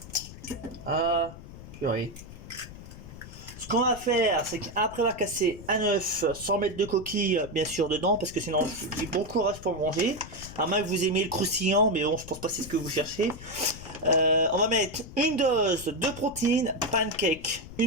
Ah, purée. Ce qu'on va faire, c'est qu'après avoir cassé un œuf, sans mettre de coquille, bien sûr, dedans, parce que sinon, j'ai bon courage pour manger. À moins que vous aimiez le croustillant, mais bon, je pense pas que c'est ce que vous cherchez. On va mettre une dose de protéines pancake.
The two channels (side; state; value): left; noise; rumble, 15 dB below the sound